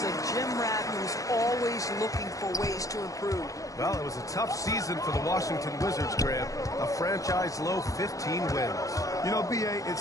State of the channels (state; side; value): late; right; 0.16 ms